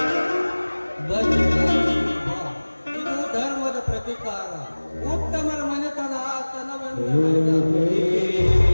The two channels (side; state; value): both; inverted; correlation -1.00